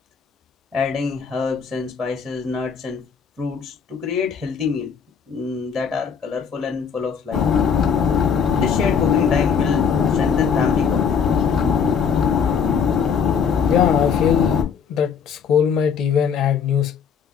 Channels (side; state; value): right; quieter; 6.6 dB